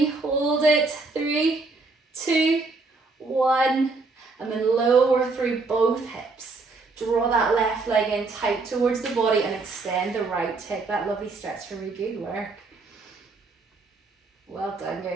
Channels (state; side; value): quieter; left; 3.8 dB